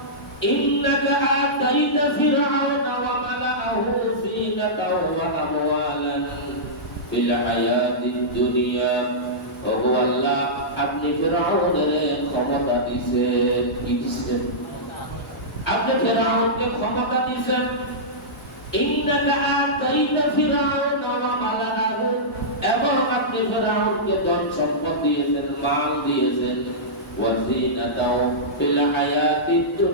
ইন্নাকা আতাইতা ফিরআউনা ওয়া মালাআহু যিনাতাও ওয়া আমওয়ালান ফিল হায়াতিদ দুনিয়া ও আল্লাহ আপনি ফিরআউনের ক্ষমতা দিয়েছেন কি দিয়েছেন? আপনি ফিরআউনকে ক্ষমতা দিয়েছেন ইন্নাকা আতাইতা ফিরআউনা ওয়া মালাআহু এবং আপনি ফেরাউনকে ধন সম্পদ দিয়েছেন মাল দিয়েছেন ওয়াজিনাতাও ফিল হায়াতিদ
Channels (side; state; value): both; normal; correlation -0.15